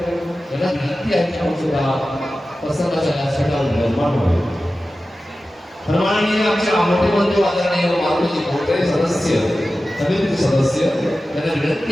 यांना विनंती आहे की आपण सुद्धा सत्संगाच्या व्यासपीठावर विराजमान व्हावे. सन्माननीय आमचे मोठे बंधू आदरणीय मारुती गोटे सदस्य समितीचे सदस्य यांना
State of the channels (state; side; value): normal; both; correlation 0.94